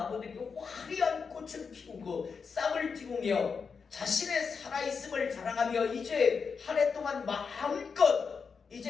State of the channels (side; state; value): right; quieter; 5.6 dB